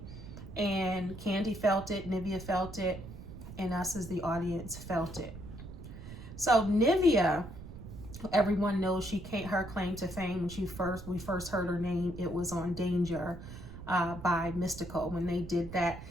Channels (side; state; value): right; noise; rumble, 12 dB below the sound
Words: and Kandi felt it, Nivea felt it, and us as the audience felt it. So Nivea, everyone knows her claim to fame when we first heard her name. It was on Danger by Mystical when they did that